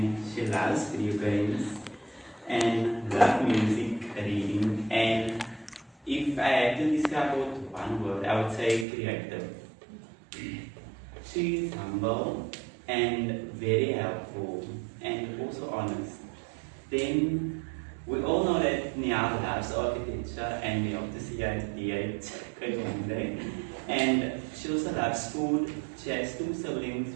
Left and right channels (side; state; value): left; drops out; at 8.8 s